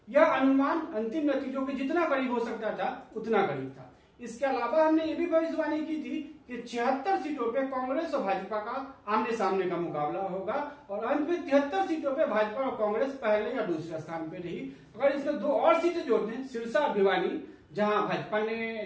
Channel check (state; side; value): identical; both; correlation 1.00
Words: यह अनुमान अंतिम नतीजों के जितना करीब हो सकता था उतना करीब था। इसके अलावा हमने ये भी भविष्यवाणी की थी कि 76 सीटों पे कांग्रेस और भाजपा का आमने सामने का मुकाबला होगा और अंत में 73 सीटों पे भाजपा और कांग्रेस पहले या दूसरे स्थान पे रही। अगर इसमें 2 और सीटें जोड़ दें, सिरसा और भिवानी, जहां भाजपा